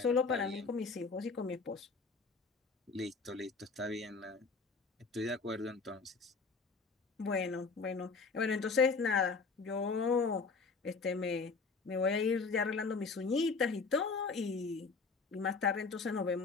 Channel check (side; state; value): right; quieter; 4.5 dB